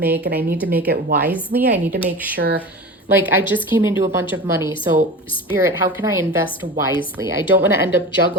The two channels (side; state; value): both; normal; correlation 0.32